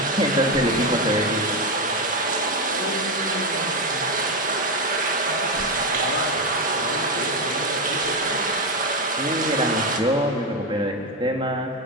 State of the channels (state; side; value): normal; both; correlation 0.10